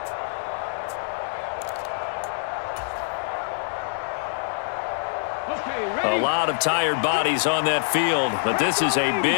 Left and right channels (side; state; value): right; silent; digital silence